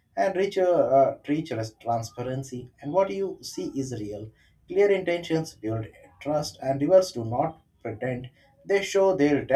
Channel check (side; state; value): both; identical; correlation 1.00